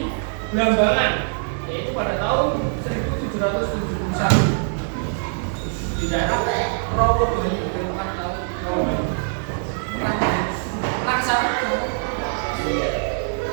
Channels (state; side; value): silent; left; 64 dB below the other